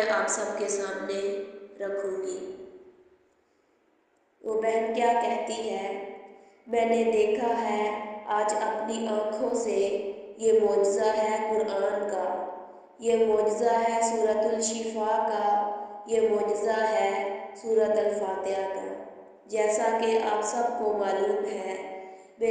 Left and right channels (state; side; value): identical; both; correlation 1.00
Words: آپ سب کے سامنے رکھوں گی۔ وہ بہن کیا کہتی ہے؟ میں نے دیکھا ہے آج اپنی آنکھوں سے، یہ معجزہ ہے قرآن کا، یہ معجزہ ہے سورۃ الشفاء کا، یہ معجزہ ہے سورۃ الفاتحہ کا۔ جیسا کہ آپ سب کو معلوم ہے،